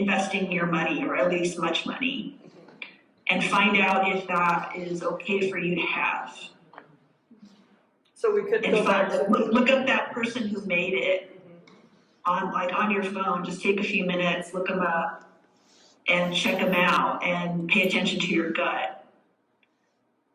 your money, or at least much money, and find out if that is okay for you to have. So we could And go back to look up that person who made it on your phone, just take a few minutes, look them up, and check them out, and pay attention to your gut.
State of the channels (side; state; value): both; identical; correlation 1.00